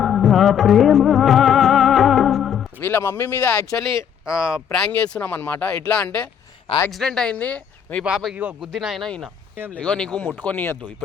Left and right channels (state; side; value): quieter; right; 8.4 dB